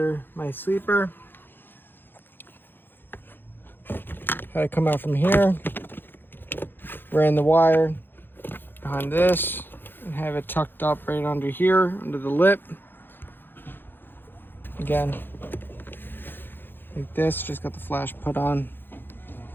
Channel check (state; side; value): late; right; 0.098 ms